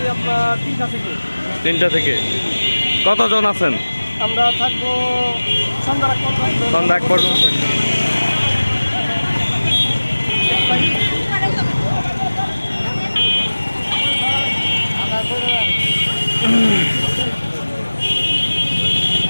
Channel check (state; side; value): inverted; both; correlation -1.00